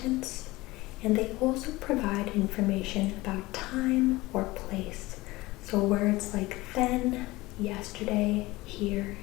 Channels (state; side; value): quieter; right; 20.2 dB